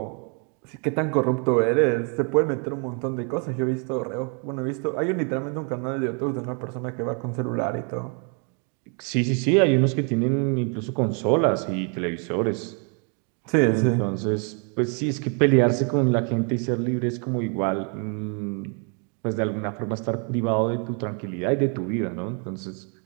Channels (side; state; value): left; quieter; 39.2 dB